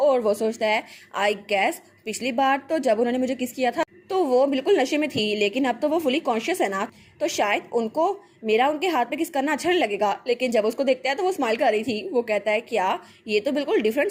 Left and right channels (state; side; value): identical; both; correlation 1.00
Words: और वो सोचता है आई गैस पिछली बार तो जब उन्होंने मुझे किस किया था तो वो बिल्कुल नशे में थी, लेकिन अब तो वो फुली कॉन्शियस है ना, तो शायद उनको मेरा उनके हाथ पे किस करना अच्छा नहीं लगेगा। लेकिन जब उसको देखता है तो वो स्माइल कर रही थी। वो कहता है क्या ये तो बिल्कुल